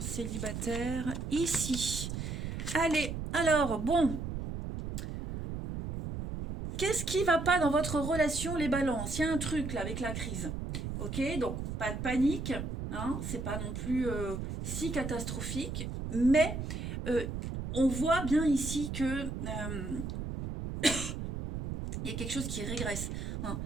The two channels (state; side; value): noise; right; rumble, 5 dB below the sound